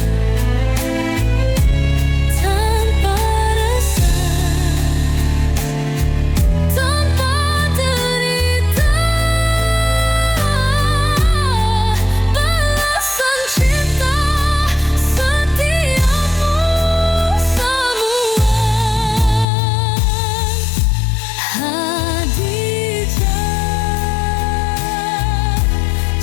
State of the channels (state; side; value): drops out; right; at 19.5 s